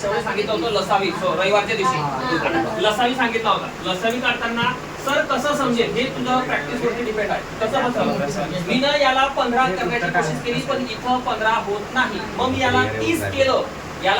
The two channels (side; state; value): both; identical; correlation 1.00